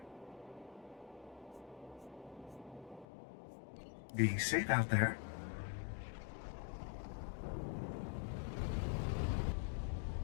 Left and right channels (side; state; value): right; drops out; at 3.1 s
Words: Be safe out there.